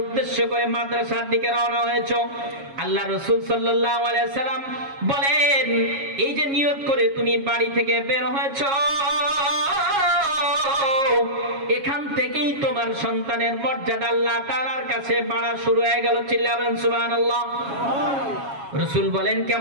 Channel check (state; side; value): late; left; 7.3 ms